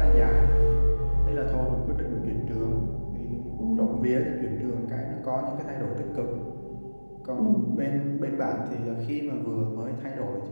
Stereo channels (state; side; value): inverted; both; correlation -1.00